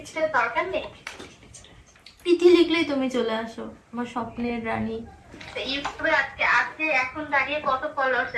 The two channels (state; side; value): identical; both; correlation 1.00